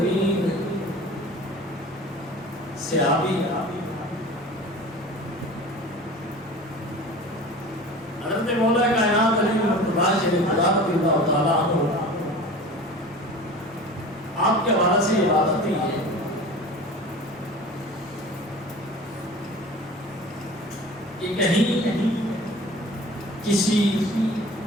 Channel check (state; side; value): normal; both; correlation 0.39